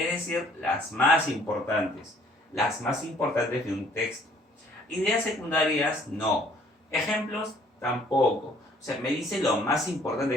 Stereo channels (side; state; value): both; normal; correlation 0.59